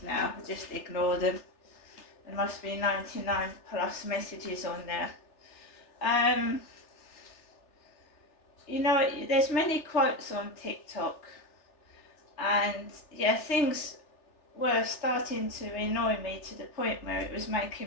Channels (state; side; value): late; right; 3.4 ms